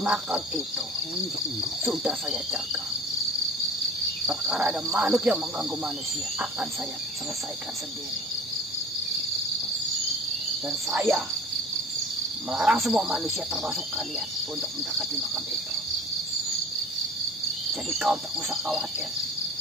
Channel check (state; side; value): normal; both; correlation 0.41